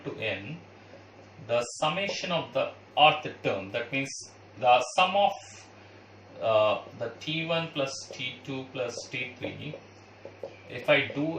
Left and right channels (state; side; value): identical; both; correlation 1.00